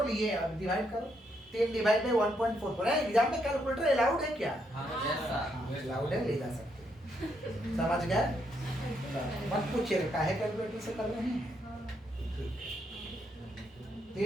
लिए, अब डिवाइड करो। 3 डिवाइड बाई 1.44 है। एग्जाम में कैलकुलेटर अलाउड है क्या? अलाउड है, ले जा सकते हैं, समझ गए? मत पूछिएगा काहे कैलकुलेटर से कर रहे हैं।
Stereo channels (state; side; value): normal; both; correlation 0.76